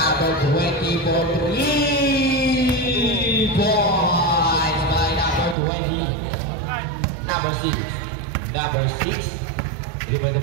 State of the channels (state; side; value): drops out; left; at 5.6 s